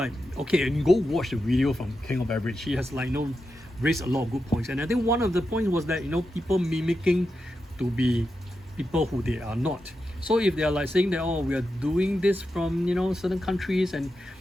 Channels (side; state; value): both; normal; correlation 0.88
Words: okay, and go watch the video from King of Average. He has raised a lot of good points, and I think one of the points was that people mimicking to be people who they are not. So if they are like saying that, oh, we are doing this from certain countries, and